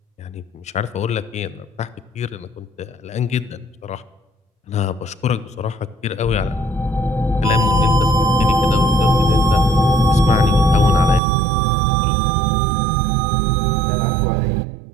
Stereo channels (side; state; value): left; drops out; at 11.2 s